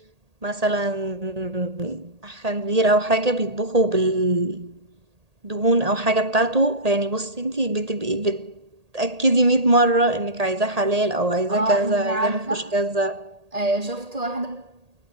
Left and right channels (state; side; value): late; left; 1.8 ms